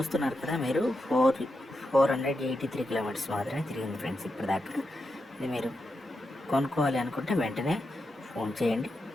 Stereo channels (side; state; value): both; normal; correlation 0.87